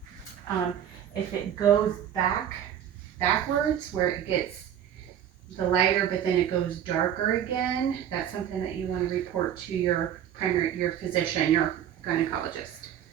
If it goes backwards, where it gets the lighter, but then it goes darker again, that's something that you want to report to your physician, your gynecologist.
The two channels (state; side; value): quieter; left; 9.9 dB